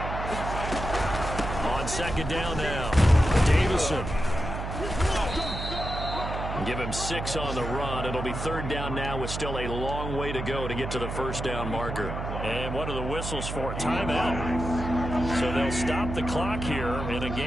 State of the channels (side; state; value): right; noise; hum, 5 dB below the sound